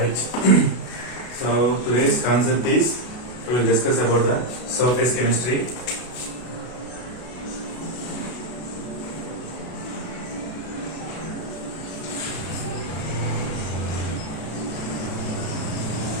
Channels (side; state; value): right; late; 33 ms